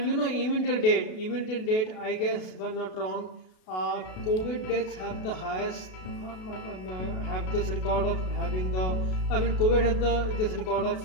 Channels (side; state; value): right; late; 32 ms